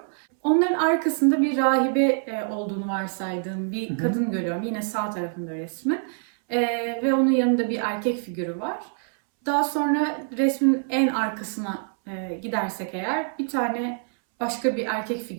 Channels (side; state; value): left; silent; 62 dB below the other